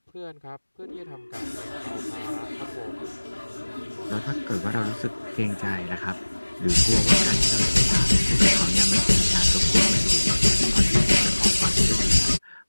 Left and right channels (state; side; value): inverted; both; correlation -1.00